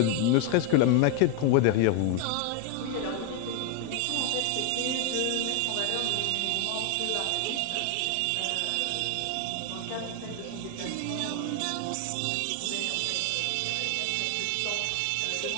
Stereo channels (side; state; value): both; different; correlation 0.00